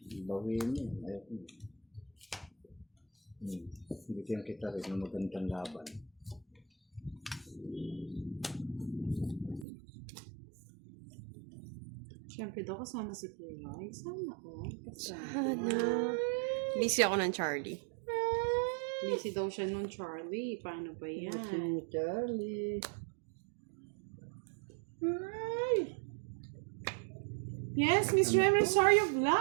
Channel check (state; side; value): drops out; left; at 9.7 s